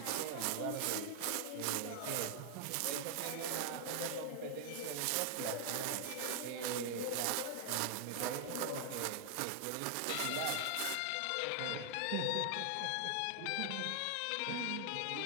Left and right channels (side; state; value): both; different; correlation 0.00